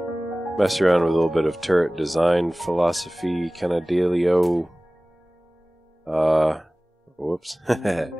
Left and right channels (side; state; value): both; normal; correlation 0.98